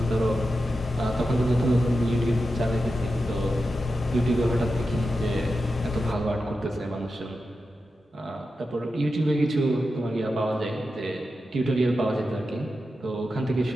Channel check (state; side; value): normal; both; correlation 0.90